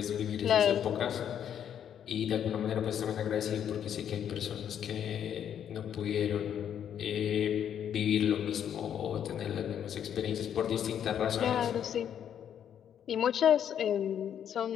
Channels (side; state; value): right; quieter; 9.2 dB